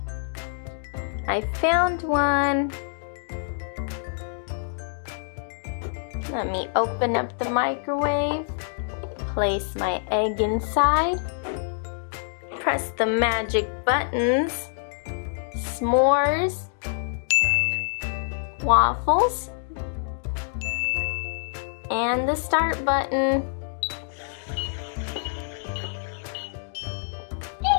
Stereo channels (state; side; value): silent; right; digital silence